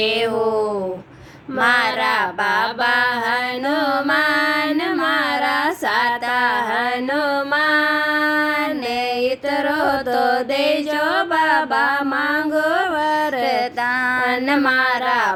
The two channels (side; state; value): both; identical; correlation 1.00